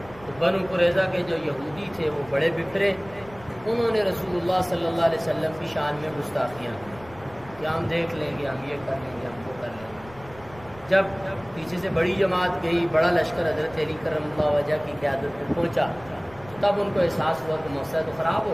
تو بنو قریظہ کے جو یہودی تھے وہ بڑے بپرے، انہوں نے رسول اللہ صلی اللہ علیہ وسلم کی شان میں گستاخیاں کی کہ ہم دیکھ لیں گے، ہم یہ کر لیں گے، ہم وہ کر لیں گے۔ جب پیچھے سے بڑی جماعت گئی، بڑا لشکر حضرت علی کرم اللہ وجہ کی قیادت میں پہنچا، تب ان کو احساس ہوا کہ موقع تو خراب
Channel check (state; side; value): noise; left; rumble, 21 dB below the sound